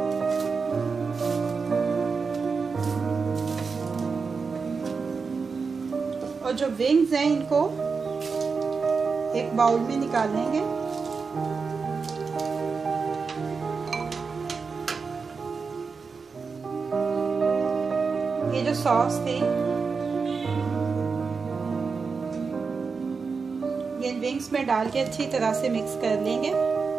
और जो विंग्स हैं इनको एक बाउल में निकाल लेंगे। ये जो सॉस थी ये विंग्स में डाल के अच्छी तरह से मिक्स कर लेंगे।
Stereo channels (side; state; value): left; quieter; 5.0 dB